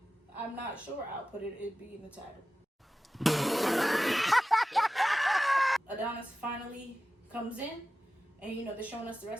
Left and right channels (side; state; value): both; normal; correlation 0.94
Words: I'm not sure. I'll put it, it'd be in the title. Adonis finally comes in, and they're showing us the